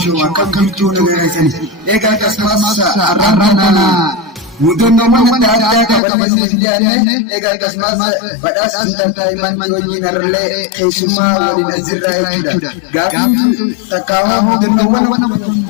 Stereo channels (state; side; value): drops out; right; at 6.0 s